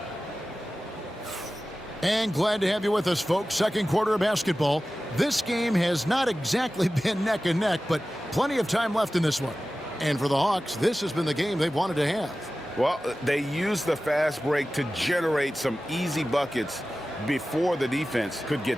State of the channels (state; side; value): normal; both; correlation 0.95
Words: And glad to have you with us, folks. Second quarter of basketball. This game has not exactly been neck and neck, but plenty of time left in this one. And for the Hawks, this has been the game they've wanted to have. Well, they used the fast break to generate some easy buckets before the defense could get